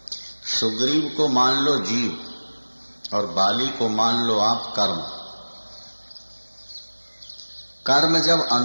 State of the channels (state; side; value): inverted; both; correlation -1.00